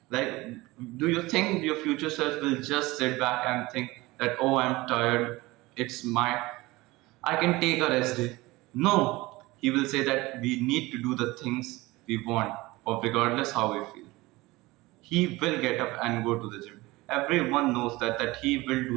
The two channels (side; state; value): left; quieter; 20.7 dB